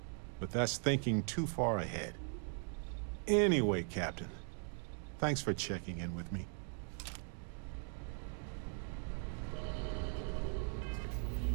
But that's thinking too far ahead. Anyway, Captain, thanks for checking in with me.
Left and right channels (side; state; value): left; silent; 51 dB below the other